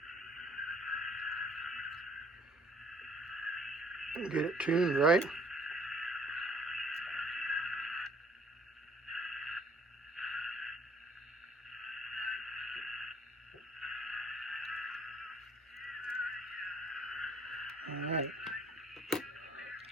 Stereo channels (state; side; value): normal; both; correlation 0.59